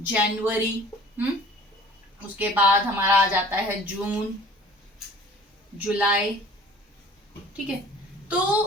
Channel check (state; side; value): normal; both; correlation 0.48